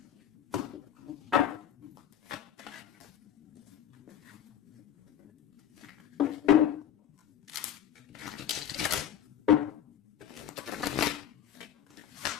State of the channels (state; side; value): quieter; right; 10.2 dB